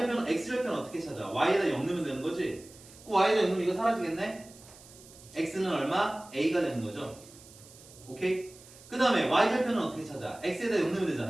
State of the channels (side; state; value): right; noise; hiss, 21 dB below the sound